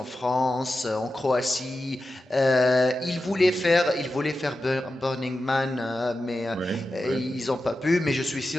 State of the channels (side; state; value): both; normal; correlation 0.92